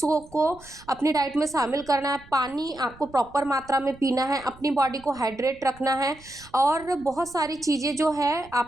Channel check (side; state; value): right; noise; rumble, 23 dB below the sound